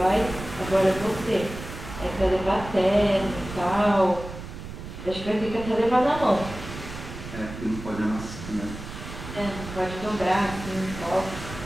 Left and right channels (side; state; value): right; noise; rumble, 11 dB below the sound